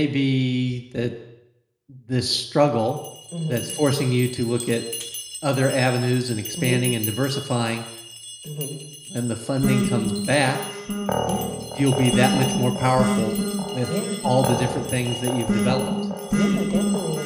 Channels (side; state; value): both; identical; correlation 1.00